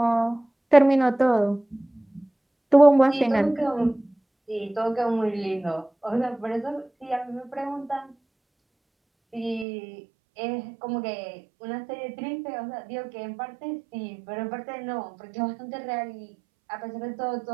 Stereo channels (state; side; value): drops out; left; at 9.7 s